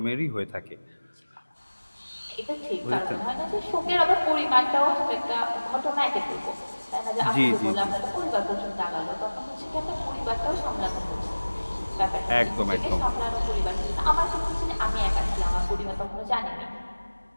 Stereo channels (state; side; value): inverted; both; correlation -1.00